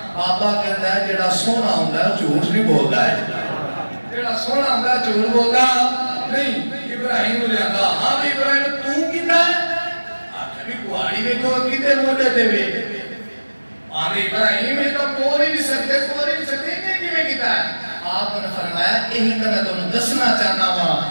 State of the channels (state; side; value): inverted; both; correlation -1.00